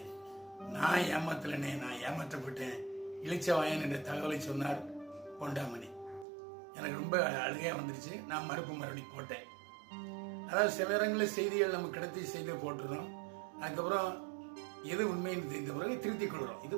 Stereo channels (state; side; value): drops out; left; at 6.2 s